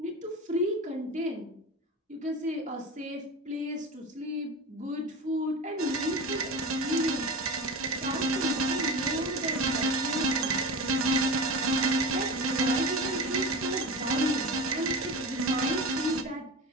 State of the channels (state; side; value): normal; both; correlation 0.28